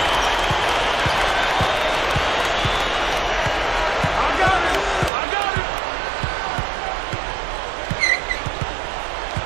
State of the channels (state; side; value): drops out; left; at 5.1 s